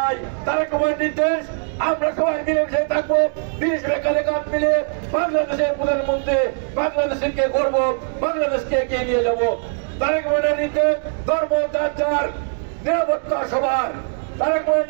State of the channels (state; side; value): silent; left; digital silence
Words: তারেক রহমানের নির্দেশ আমরা সবাই মিলেমিশে থাকবো, মিলেমিশে কাঁধে কাঁধ মিলে বাংলাদেশের প্রধানমন্ত্রী বাংলাদেশকে গর্ব, বাংলাদেশকে এগিয়ে নিয়ে যাবো। তারেক রহমানের নির্দেশ ধর্ম যার যার, নিরাপত্তা সবার। তারেক রহমানের